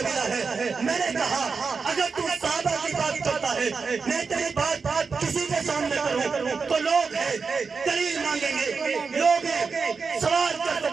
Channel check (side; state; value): left; quieter; 5.0 dB